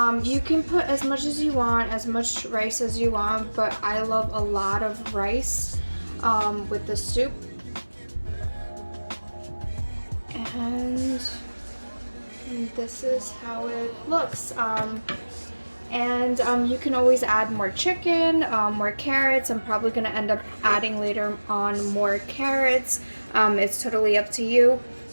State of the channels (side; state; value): both; inverted; correlation -1.00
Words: you can put as much as you want, as much rice as you want, but I love a lot of rice with the soup. And this is how it looks. And you can always add more chicken, more carrots. I'm probably gonna end up adding later on more carrots. It's totally up to you.